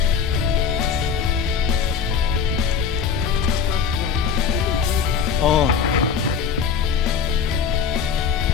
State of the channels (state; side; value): quieter; right; 6.6 dB